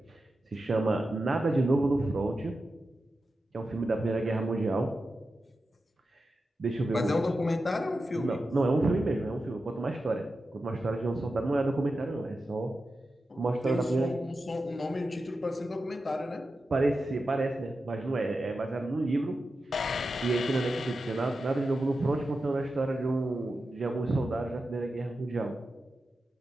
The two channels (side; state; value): both; normal; correlation 0.91